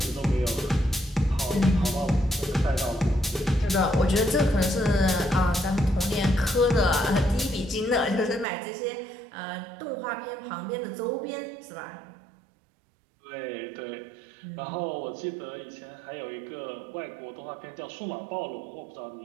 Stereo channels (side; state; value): left; drops out; at 8.5 s